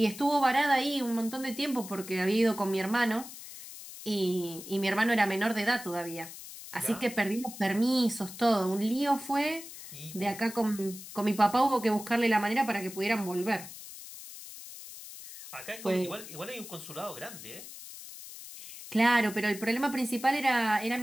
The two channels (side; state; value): left; noise; hiss, 13 dB below the sound